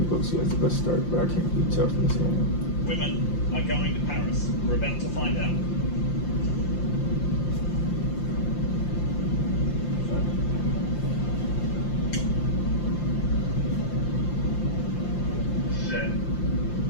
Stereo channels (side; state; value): right; late; 5.7 ms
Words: has the best start, but I can't really tell from this game. Women are going to Paris. We're about to find out.